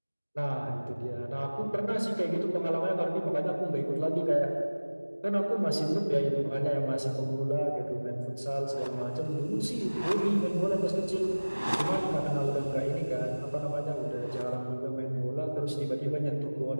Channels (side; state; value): both; inverted; correlation -1.00